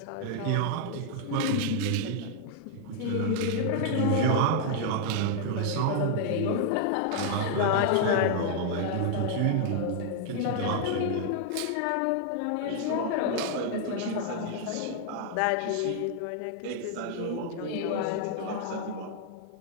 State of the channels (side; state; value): both; different; correlation -0.01